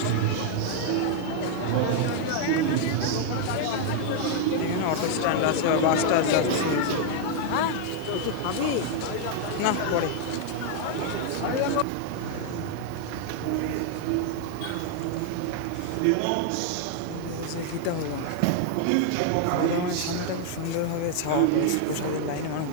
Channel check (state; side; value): different; both; correlation 0.00